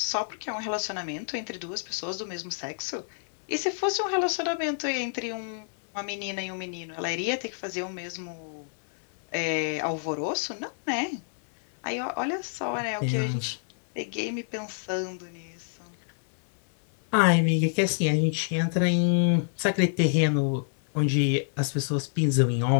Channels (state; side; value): silent; right; 60 dB below the other